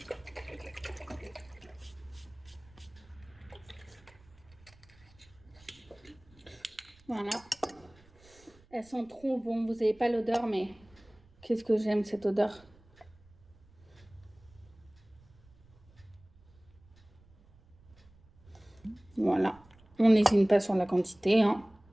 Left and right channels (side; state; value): right; noise; rumble, 27 dB below the sound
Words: Voilà. Elles sont trop bonnes. Vous n'avez pas l'odeur, mais qu'est-ce que j'aime cette odeur. Voilà. On n'hésite pas sur la quantité, hein.